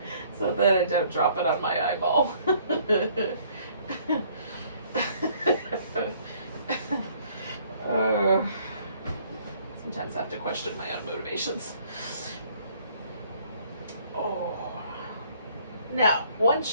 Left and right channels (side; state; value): both; inverted; correlation -0.61